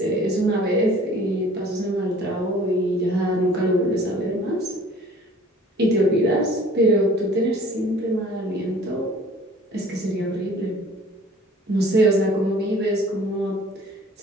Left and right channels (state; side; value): normal; both; correlation 0.50